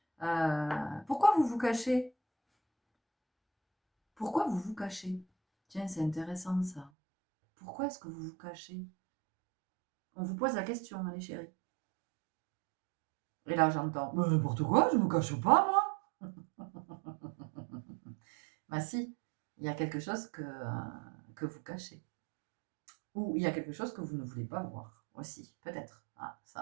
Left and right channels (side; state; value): left; drops out; at 6.9 s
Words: Pourquoi vous vous cachez? Pourquoi vous vous cachez? Tiens, c'est intéressant ça. Pourquoi est-ce que vous vous cachez? On vous pose la question, allez chérie. Et là, j'entends, n'importe quoi, je me cache pas, moi. Bah si, il y a quelque chose que vous cachez. Ou il y a quelque chose que vous ne voulez pas voir aussi, peut-être. Ah,